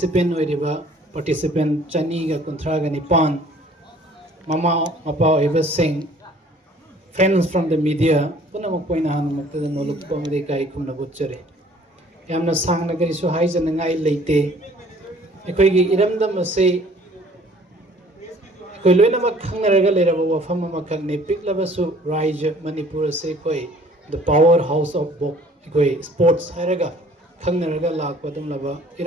पार्टिसिपेंट चनीगा कुंथ्रागा निपान ममा मपा ओइबसिंग फ्रेंड्स फ्रॉम द मीडिया पुनमक पोइना हानमक्तदा नोलुकपमदे काई खुमना बुच्चरे यामना सांगना करिसु हाइजनंगाई लेते अखोइगी इरमदम असे कोई लोइनम खंगरगा लेरबा वफम अमखने पिकलबसु राज्य मणिपुर से कोई द पावर हाउस ऑफ बॉक कोई स्पोर्ट्स हैरगा खंगरगा लाकपदम लबा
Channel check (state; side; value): normal; both; correlation 0.54